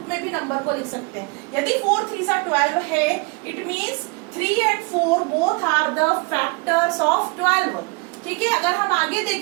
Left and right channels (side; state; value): left; quieter; 29.9 dB